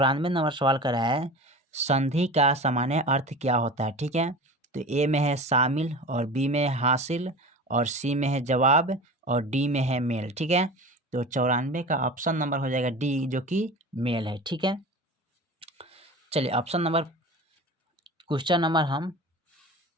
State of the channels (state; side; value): normal; both; correlation 0.34